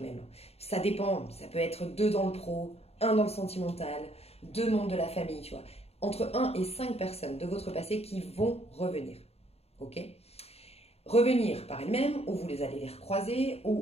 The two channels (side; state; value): right; late; 0.30 ms